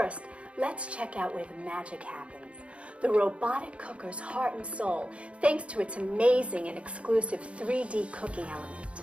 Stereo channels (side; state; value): left; late; 0.061 ms